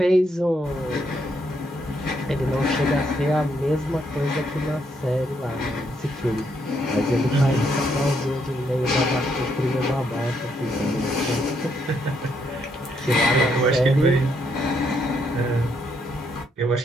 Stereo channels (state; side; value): normal; both; correlation 0.75